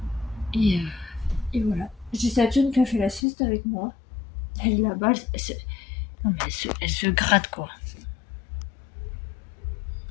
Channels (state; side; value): drops out; right; at 3.2 s